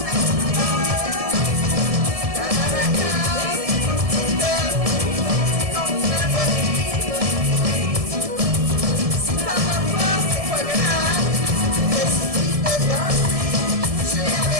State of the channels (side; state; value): left; late; 1.7 ms